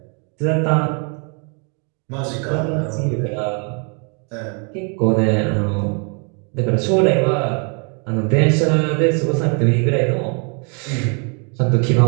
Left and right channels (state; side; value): quieter; left; 37.6 dB